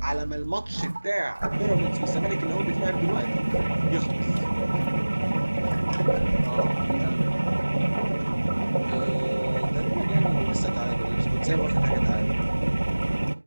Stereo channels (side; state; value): both; inverted; correlation -1.00